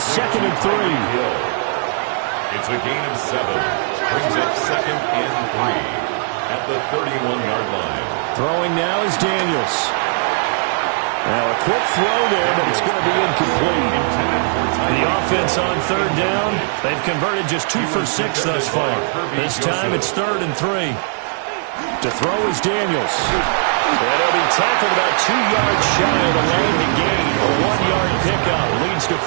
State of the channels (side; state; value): left; silent; 63 dB below the other